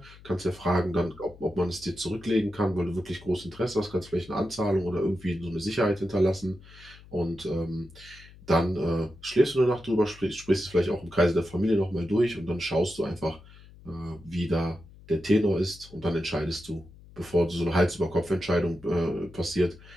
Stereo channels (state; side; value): noise; left; hum, 21 dB below the sound